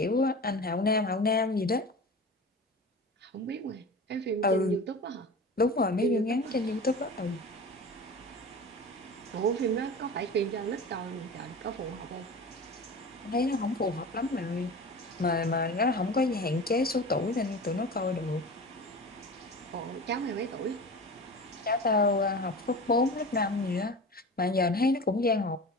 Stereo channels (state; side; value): normal; both; correlation 0.33